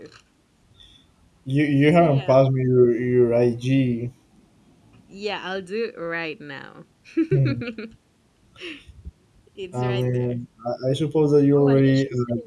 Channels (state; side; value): identical; both; correlation 1.00